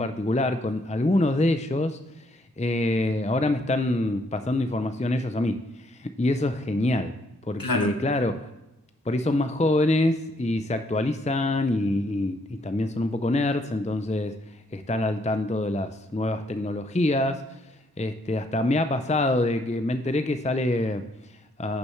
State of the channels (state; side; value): normal; both; correlation 0.71